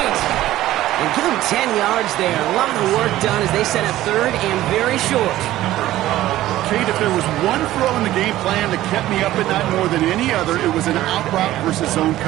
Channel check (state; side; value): quieter; left; 14.8 dB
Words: And give him 10 yards there. A lot of work done as they set up third and very short. Kate, if there was one throw in the game plan that kept me up at night more than any other, it was an out route versus zone